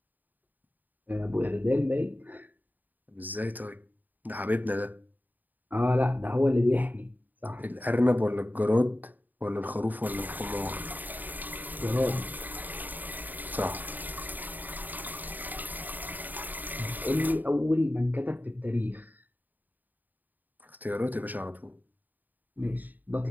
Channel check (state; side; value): late; left; 0.086 ms